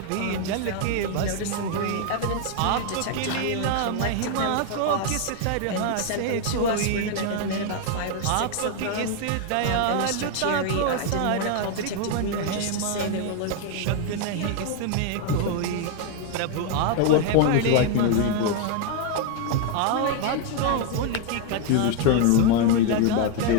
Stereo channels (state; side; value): different; both; correlation 0.01